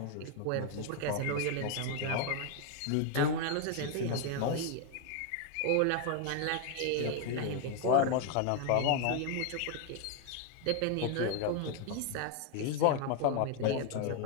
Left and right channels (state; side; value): different; both; correlation 0.00